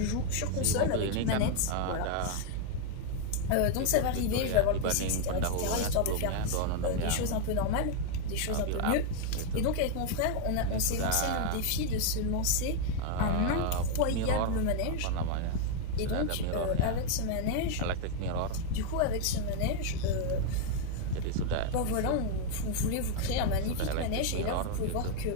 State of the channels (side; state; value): both; different; correlation 0.00